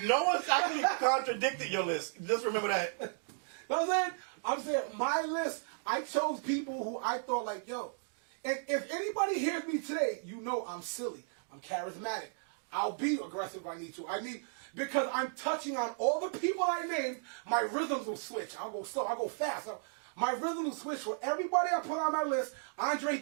No one's actually contradicted your list. Just remember that. You know what I'm saying my list, I chose people who I thought like, yo, and if anybody hears me today, you know I'm silly. I'm charismatic. I'll be aggressive if I need to. Because I'm touching on all the people I named, my rhythms will switch. I'll go slow, I'll go fast. My rhythm will switch for everybody I put on my list. Andre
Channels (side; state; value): left; silent; digital silence